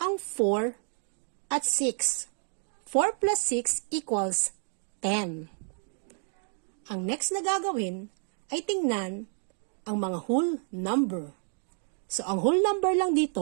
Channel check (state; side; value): silent; left; 57 dB below the other